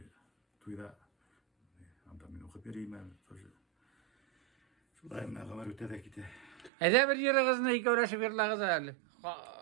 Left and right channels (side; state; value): left; drops out; at 6.7 s